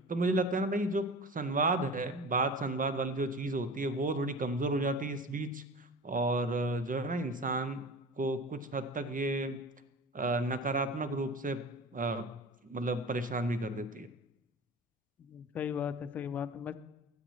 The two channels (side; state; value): both; normal; correlation 0.36